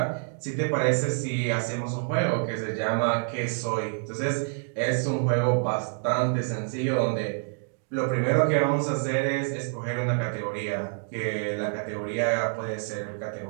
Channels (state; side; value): silent; left; 60 dB below the other